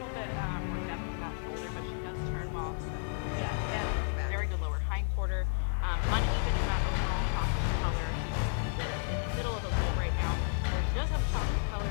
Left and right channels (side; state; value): right; silent; 56 dB below the other